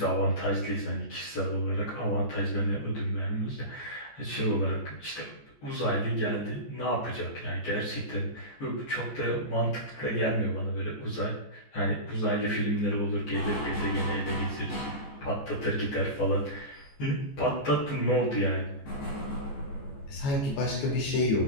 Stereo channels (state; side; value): late; right; 14 ms